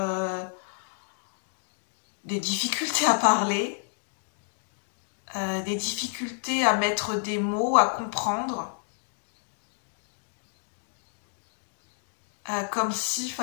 des difficultés à parler, des difficultés à mettre des mots, à comprendre. Comme s'il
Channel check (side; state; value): right; silent; digital silence